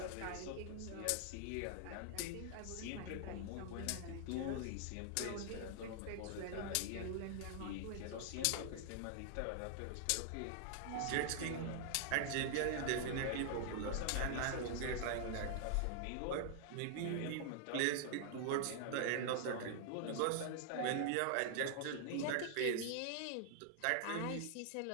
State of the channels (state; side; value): different; both; correlation 0.00